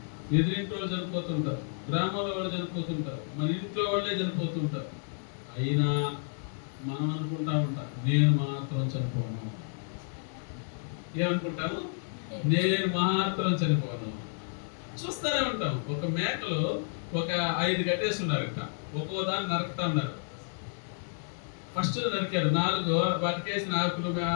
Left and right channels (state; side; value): silent; right; digital silence